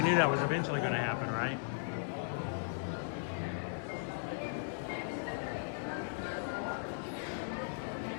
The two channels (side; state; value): right; silent; 53 dB below the other